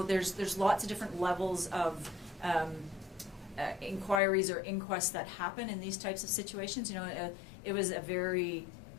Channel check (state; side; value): drops out; right; at 4.2 s